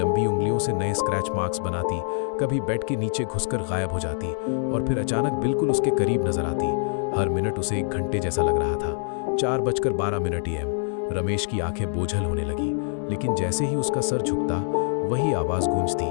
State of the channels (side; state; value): right; silent; digital silence